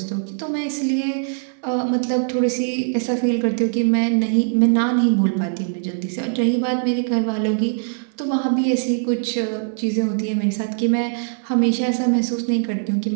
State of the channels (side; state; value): left; silent; 61 dB below the other